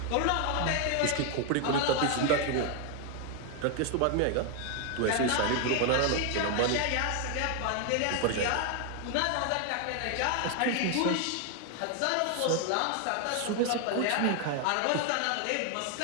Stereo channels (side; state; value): both; different; correlation 0.01